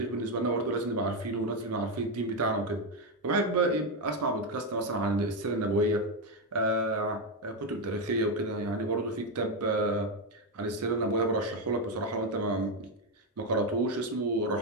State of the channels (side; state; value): both; normal; correlation 0.06